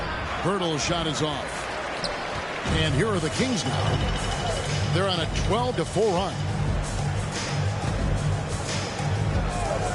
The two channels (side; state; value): both; identical; correlation 1.00